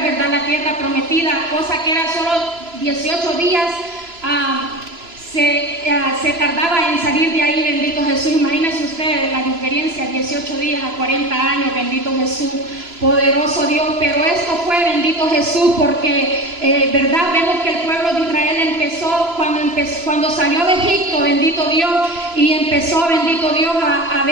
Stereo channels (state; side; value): late; left; 3.0 ms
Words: ¿verdad?, a la tierra prometida, cosa que era solo 18 días. Se tardaba en salir de ahí, bendito Jesús. Imagínense ustedes la diferencia, 18 días a 40 años, bendito Jesús, poderoso Dios. Pero esto fue, bendito Jesús, porque, verdad, vemos que el pueblo de Israel empezó cuando salió de Egipto, bendito Dios, y empezó, bendito Dios, a